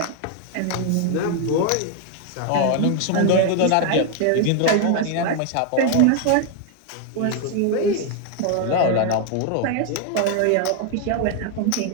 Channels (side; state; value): both; different; correlation 0.01